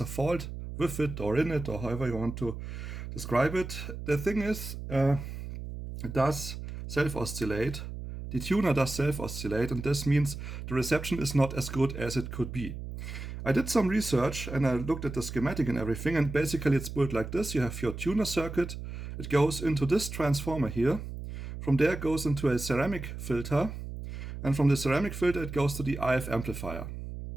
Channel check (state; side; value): noise; right; hum, 8 dB below the sound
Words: a fault with it or in it, or however you want to describe it. The thing is, it does self-oscillate. The tuner does self-oscillate, and this means the reception is not as good as it could be. I did some research and I looked at the schematic and everything, and basically it's built like this. You have your tuner circuit. It goes into this transformer here. From there it goes into a ceramic filter, and from the ceramic filter it goes to the IF amplifier.